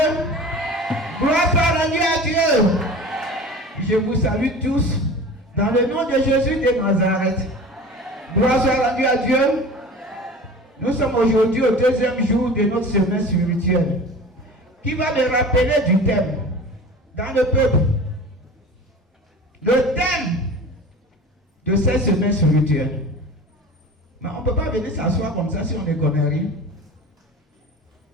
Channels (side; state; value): both; normal; correlation 0.38